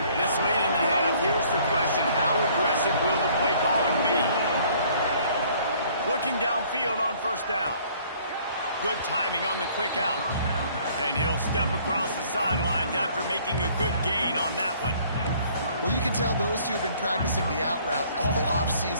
This late in the half, here's the question: how aggressive will the play calling be? Looking downfield on first down. Good timing on the quick out. And he'll step across the sidelines after making a good gain on that one. Well, you can tell those two have been practicing the out route all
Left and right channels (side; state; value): both; inverted; correlation -0.58